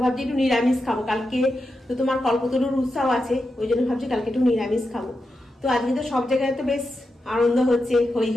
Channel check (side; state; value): both; normal; correlation 0.88